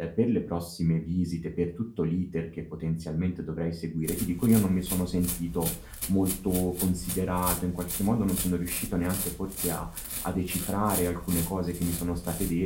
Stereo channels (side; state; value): both; identical; correlation 1.00